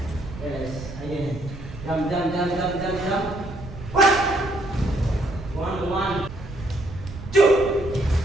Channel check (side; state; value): right; noise; rumble, 12 dB below the sound